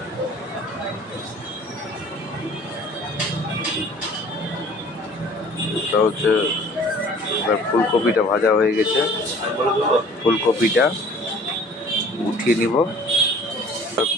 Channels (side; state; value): both; normal; correlation 0.51